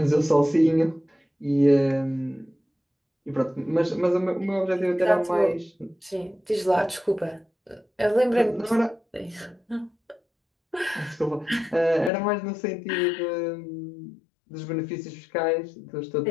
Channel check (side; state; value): right; drops out; at 12.1 s